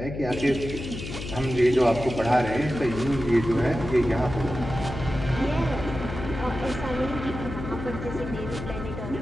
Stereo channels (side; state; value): left; noise; hum, 8 dB below the sound